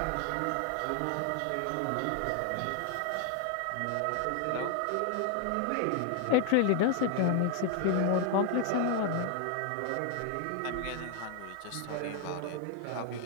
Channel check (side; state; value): both; different; correlation 0.00